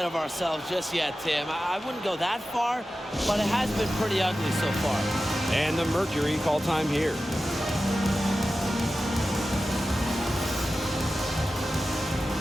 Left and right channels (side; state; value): both; normal; correlation 0.94